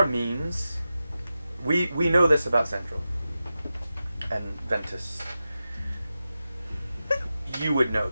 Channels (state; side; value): inverted; both; correlation -0.92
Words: means. We know this about Zendril and Ventus. You would know